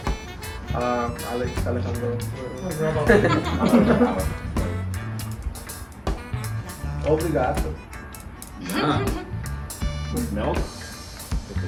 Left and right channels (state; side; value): identical; both; correlation 1.00